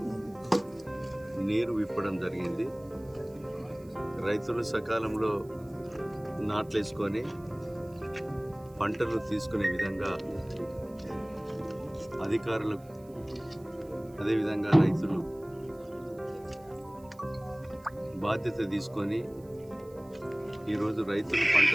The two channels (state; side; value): noise; right; hiss, 28 dB below the sound